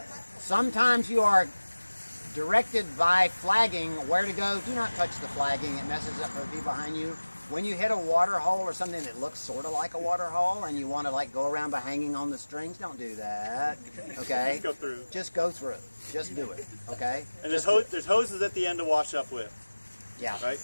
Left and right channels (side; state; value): both; inverted; correlation -1.00